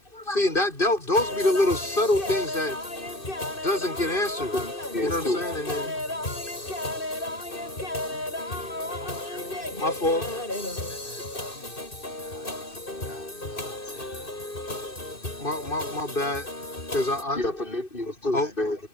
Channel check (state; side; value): late; right; 2.6 ms